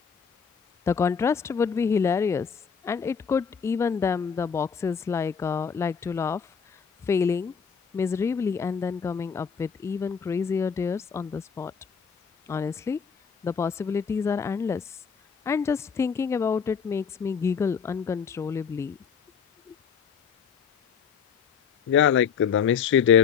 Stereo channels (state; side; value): quieter; right; 6.6 dB